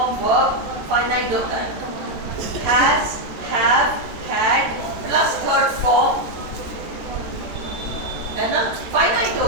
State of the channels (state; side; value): late; left; 14 ms